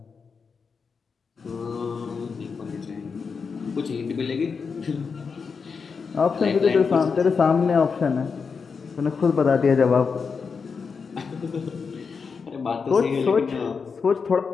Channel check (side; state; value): right; quieter; 5.4 dB